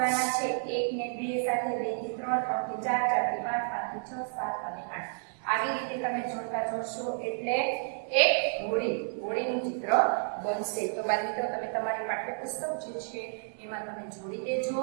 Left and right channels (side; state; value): left; silent; digital silence